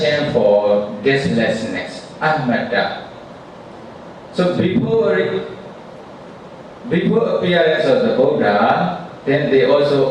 for deathlessness, anatta. So before appearance of the Buddha, then they also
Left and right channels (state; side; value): identical; both; correlation 1.00